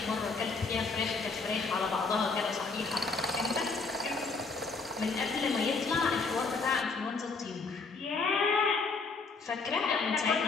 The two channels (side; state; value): right; quieter; 4.2 dB